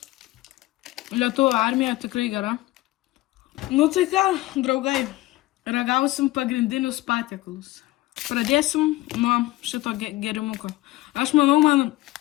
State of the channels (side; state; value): right; quieter; 18.6 dB